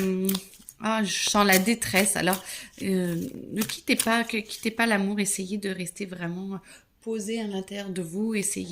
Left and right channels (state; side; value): identical; both; correlation 1.00